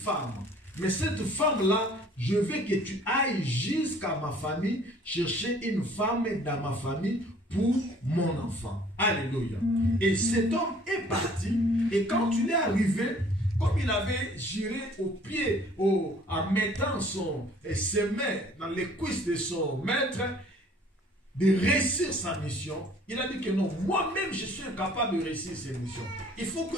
Mais cette femme-là, je veux que tu ailles jusqu'à ma famille, chercher une femme dans ma famille pour mon enfant. Alléluia. Et cet homme est parti, et quand il est arrivé, comme il avait juré au pied, en mettant ses mains dans les cuisses de son maître, de réussir sa mission, il a dit que non, moi-même je suis incapable de réussir cette mission. Il faut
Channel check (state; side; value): normal; both; correlation 0.55